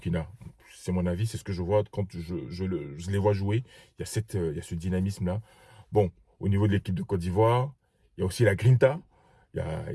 C'est mon avis, c'est ce que je vois quand je les vois jouer. Il y a ce dynamisme-là. Bon, au niveau de l'équipe de Côte d'Ivoire, il y a aussi la grinta. Il y a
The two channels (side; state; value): both; identical; correlation 1.00